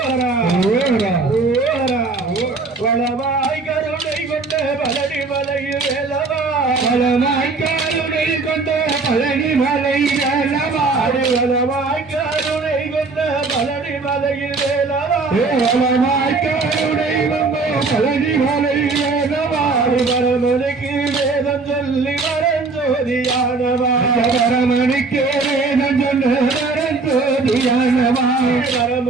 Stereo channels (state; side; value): quieter; left; 3.9 dB